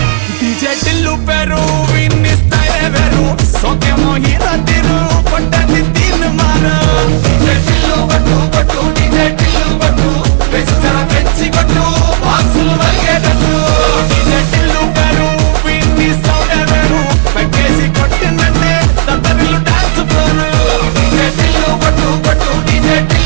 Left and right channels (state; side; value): silent; left; digital silence